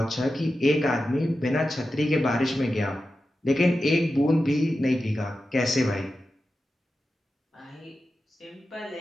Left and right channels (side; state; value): both; normal; correlation 0.92